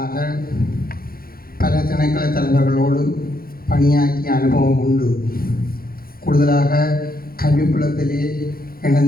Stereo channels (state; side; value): late; right; 0.43 ms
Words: பல திணைக்கள தலைவர்களோடு பணியாற்றிய அனுபவம் உண்டு. கூடுதலாக கல்விப்புலத்திலே